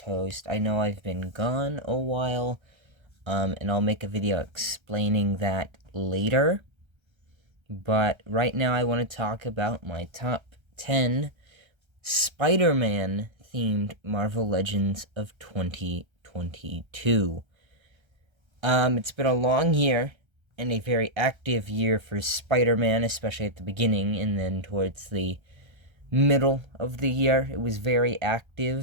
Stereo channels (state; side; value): late; left; 1.3 ms